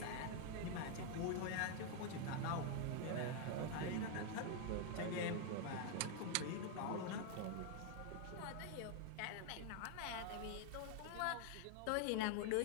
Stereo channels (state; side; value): different; both; correlation 0.00